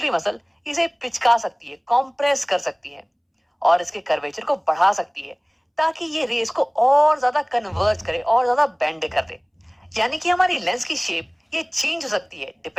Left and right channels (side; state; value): both; identical; correlation 1.00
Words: मसल इसे पिचका सकती है, कॉम्प्रेस कर सकती है, और इसके कर्वेचर को बढ़ा सकती है, ताकि ये रेस को और ज्यादा कन्वर्ज करे और ज्यादा बेंड कर दे। यानी कि हमारी लेंस की शेप ये चेंज हो सकती है